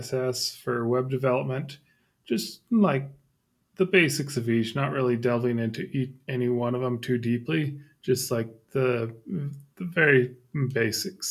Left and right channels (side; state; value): both; identical; correlation 1.00